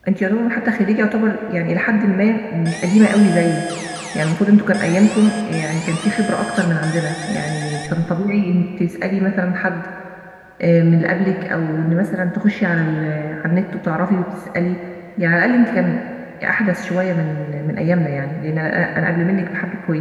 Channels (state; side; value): identical; both; correlation 1.00